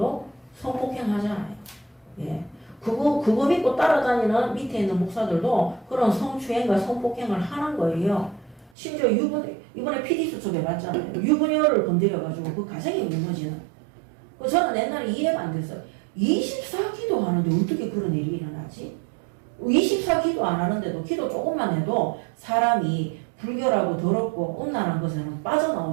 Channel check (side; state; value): left; drops out; at 8.7 s